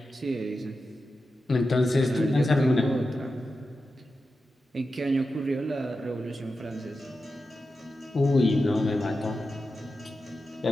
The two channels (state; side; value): normal; both; correlation 0.91